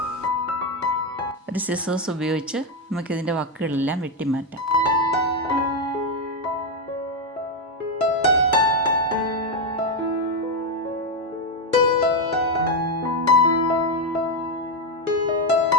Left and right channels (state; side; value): normal; both; correlation 0.06